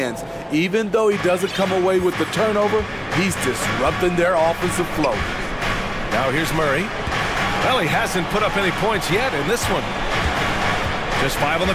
Even though he doesn't come away with the turnover, he's disrupting their offensive flow. Now here's Murray. Well, he hasn't put up any points yet in this one. Just 5 on the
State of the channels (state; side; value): identical; both; correlation 1.00